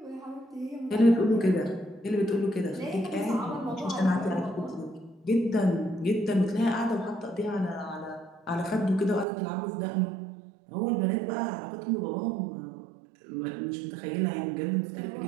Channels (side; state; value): left; drops out; at 9.2 s